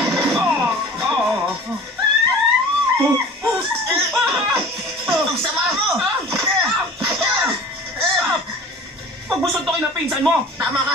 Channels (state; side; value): normal; both; correlation 0.42